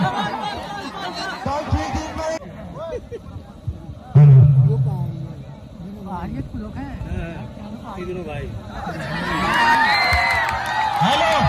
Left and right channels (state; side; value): identical; both; correlation 1.00